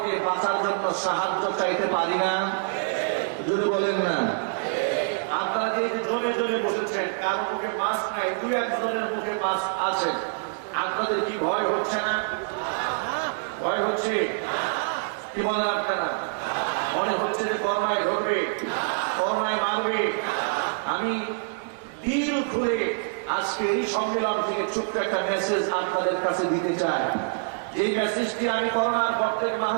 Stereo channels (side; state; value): left; silent; digital silence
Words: বাঁচার জন্য সাহায্য চাইতে পারি না? যদি বলেন না। আপনারা যে জনে জনে বসেছেন, কারো মুখে মাস্ক নাই, দুই একজনের মুখে মাস্ক আছে, আপনাদের কি ভয় হচ্ছে না? ভয় হচ্ছে? কি বলেন আপনারা? মনে হচ্ছে যে করোনায় ধরবে, করোনায় মারবে। আমি দিল খুলে আজকে এই সম্মেলন থেকে ছোট্ট একটা মেসেজ আপনাদের কাছে দিতে চাই। এই মেসেজটি আমি করোনার পর থেকে